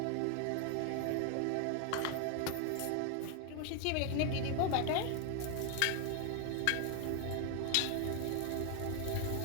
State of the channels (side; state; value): both; different; correlation 0.00